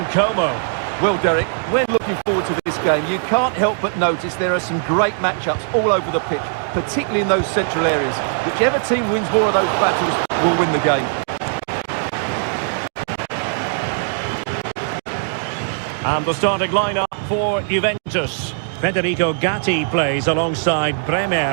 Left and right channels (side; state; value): left; silent; digital silence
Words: Como. Well, Derek, when looking forward to this game, you can't help but notice there are some great matchups all over the pitch, particularly in those central areas. Whichever team wins more of those battles will win the game. And the starting lineup for Juventus. Federico Gatti plays alongside